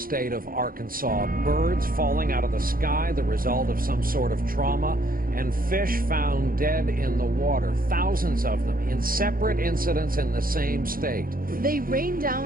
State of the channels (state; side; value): late; left; 0.42 ms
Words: of Arkansas. Birds falling out of the sky, the result of some sort of trauma, and fish found dead in the water. Thousands of them in separate incidents in the same state. They rained